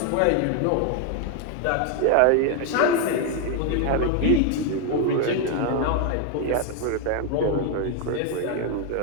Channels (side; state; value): both; different; correlation 0.01